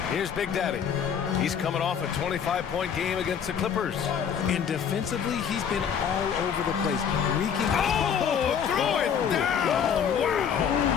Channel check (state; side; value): quieter; right; 7.7 dB